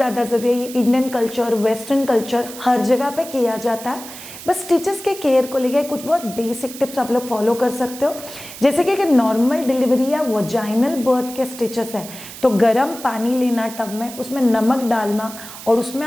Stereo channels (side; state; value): right; noise; hiss, 14 dB below the sound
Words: ज़रूरी है। ये इंडियन कल्चर, वेस्टर्न कल्चर हर जगह पे किया जाता है। बस स्टिचेस के केयर को लेके कुछ बहुत बेसिक टिप्स आप लोग फॉलो कर सकते हो। जैसे कि अगर नॉर्मल डिलीवरी या वजाइनल बर्थ के स्टिचेस है तो गर्म पानी लेना टब में, उसमें नमक डालना और उसमें